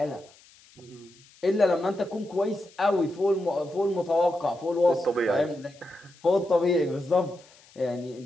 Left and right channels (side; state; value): left; noise; hiss, 27 dB below the sound